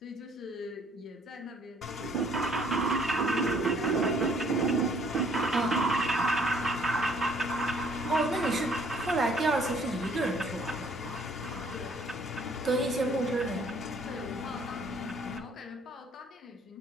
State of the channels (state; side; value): normal; both; correlation 0.61